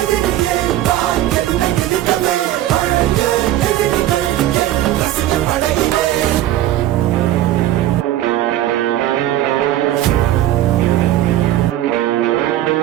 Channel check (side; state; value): left; quieter; 13.5 dB